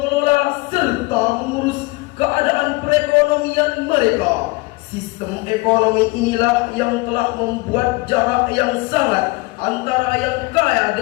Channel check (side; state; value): right; quieter; 24.4 dB